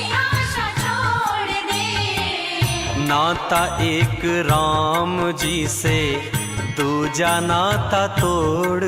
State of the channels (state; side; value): identical; both; correlation 1.00